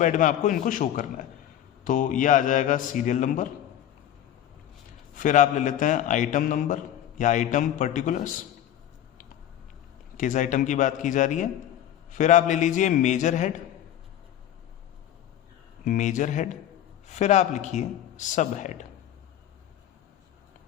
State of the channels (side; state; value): right; quieter; 11.3 dB